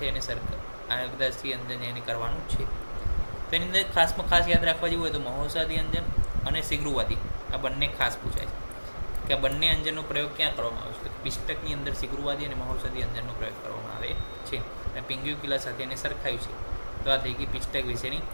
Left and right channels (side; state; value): both; inverted; correlation -1.00